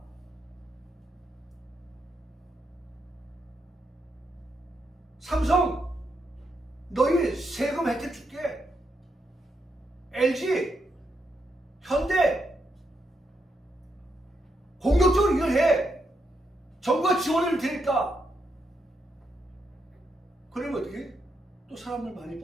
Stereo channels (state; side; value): normal; both; correlation 0.81